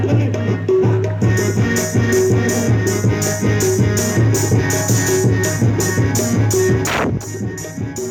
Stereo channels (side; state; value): both; identical; correlation 1.00